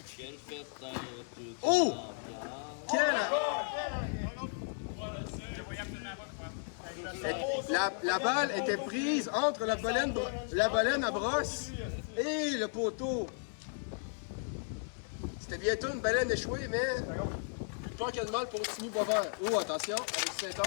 Quelle fête dans toute Oh! l'ambiance? La balle était prise entre la baleine à brosse et le poteau. C'était bientôt une baleine échouée, mais pas qu'il y a de mal pour Timmy Boisvert. Oh, attention, Alexis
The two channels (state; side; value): silent; right; 55 dB below the other